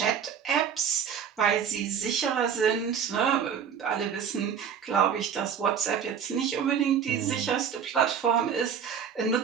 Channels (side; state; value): left; quieter; 7.7 dB